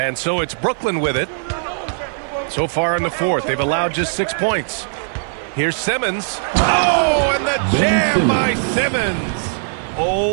so it's Brooklyn with it. So far in the fourth, they've allowed just 6 points. Here's Simmons. Oh, and the jam by Simmons.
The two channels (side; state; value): left; silent; 55 dB below the other